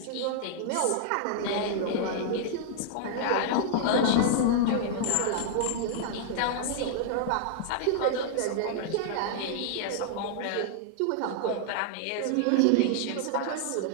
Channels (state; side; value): different; both; correlation -0.01